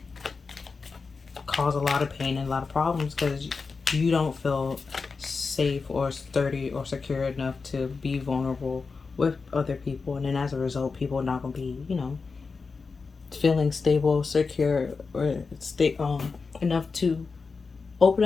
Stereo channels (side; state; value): right; quieter; 4.6 dB